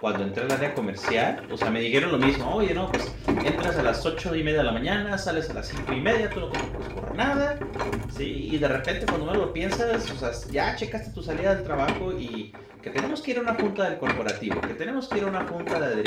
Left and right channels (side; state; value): both; identical; correlation 1.00